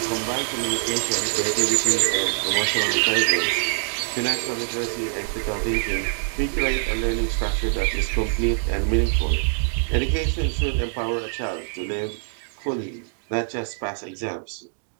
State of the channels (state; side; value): silent; left; digital silence